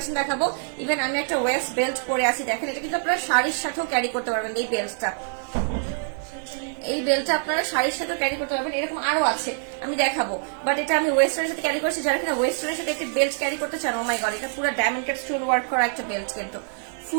দেখাবো। ইভেন আমি একটা ওয়েস্ট বেল্ট পরে আছি, দেখেন এটা কিন্তু আপনারা শাড়ির সাথেও ক্যারি করতে পারবেন। এই বেল্টটা আপনারা শাড়ির সাথে ক্যারি করতে পারবেন। এরকম আরো আছে, আমি দেখাবো, বাট এটা আমি ওয়েস্টার্নের সাথে ক্যারি করছি। যারা কিনা ওয়েস্টার্নের সাথে একটি বেল্ট ক্যারি করতে চান, ও মাই গড, এটা পুরো ডায়মন্ড কাট স্টোন ওয়ার্ক করা একটা বেল্ট, কিন্তু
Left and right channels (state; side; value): silent; left; 61 dB below the other